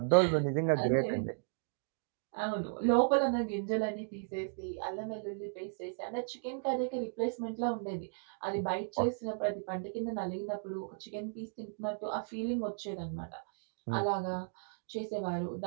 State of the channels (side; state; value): left; silent; digital silence